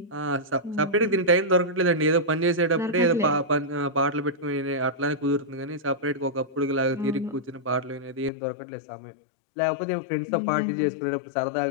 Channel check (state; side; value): drops out; right; at 8.3 s